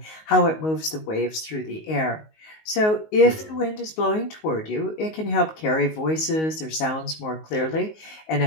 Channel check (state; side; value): late; right; 19 ms